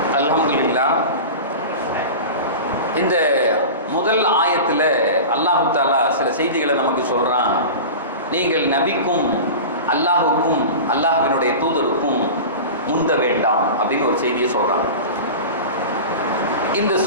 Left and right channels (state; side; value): inverted; both; correlation -0.31